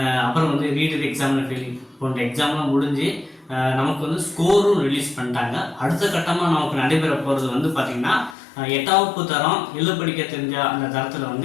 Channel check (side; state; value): right; drops out; at 8.3 s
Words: அப்புறம் ரீடர் எக்ஸாமில் ஃபெயில் போன்ற எக்ஸாம்லாம் முடிஞ்சு நமக்கு ஸ்கோரும் ரிலீஸ் பண்ணிட்டாங்க. அடுத்த கட்டமாக நமக்கு நடைபெற போகிறது பார்த்திங்கன்னா 8ஆம் வகுப்பு தரம் எழுத படிக்க தெரிஞ்ச அந்த